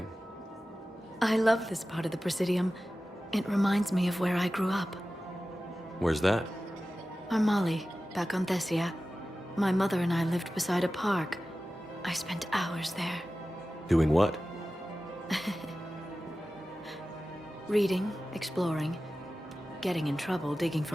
I love this part of the Presidium. It reminds me of where I grew up. Where's that? Armali, back on Thessia. My mother and I lived beside a park. I spent hours there. Doing what? Reading, exploring, getting in trouble digging for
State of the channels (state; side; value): normal; both; correlation 0.95